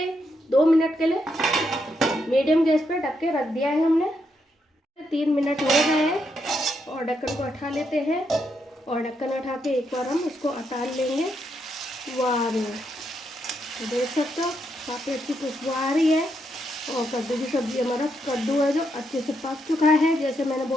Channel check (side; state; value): both; normal; correlation 0.80